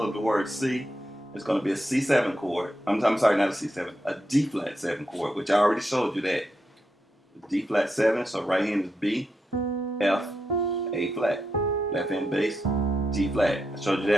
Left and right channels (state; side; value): normal; both; correlation 0.84